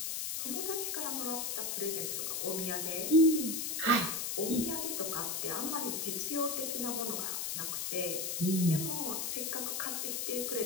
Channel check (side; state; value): left; noise; hiss, 1 dB below the sound